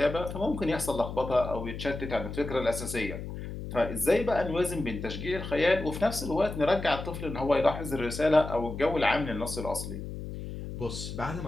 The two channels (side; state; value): left; noise; hum, 8 dB below the sound